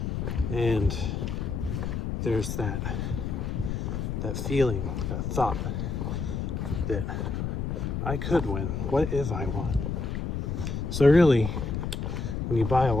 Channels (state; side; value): noise; left; rumble, 2 dB below the sound